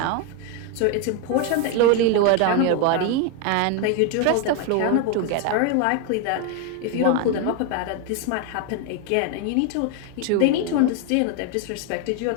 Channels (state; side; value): different; both; correlation 0.01